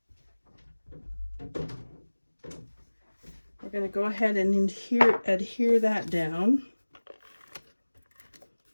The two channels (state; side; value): inverted; both; correlation -1.00